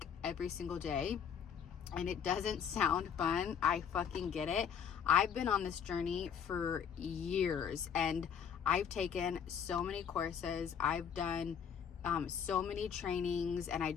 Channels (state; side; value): quieter; right; 7.7 dB